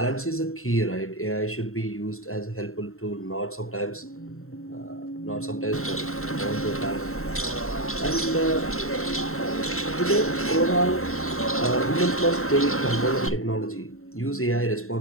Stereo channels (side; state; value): right; late; 0.62 ms